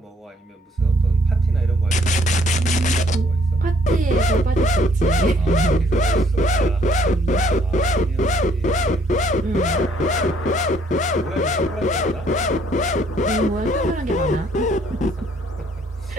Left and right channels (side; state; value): both; normal; correlation 0.64